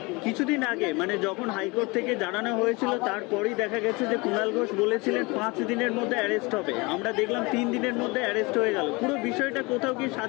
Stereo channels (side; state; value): right; quieter; 25.8 dB